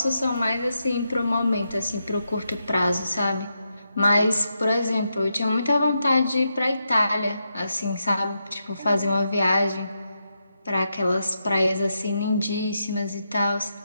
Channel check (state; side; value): inverted; both; correlation -0.84